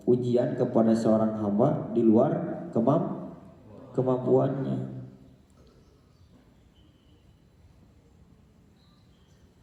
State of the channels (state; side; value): identical; both; correlation 1.00